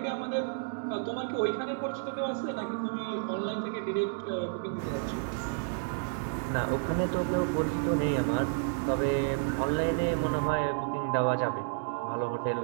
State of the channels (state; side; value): silent; left; digital silence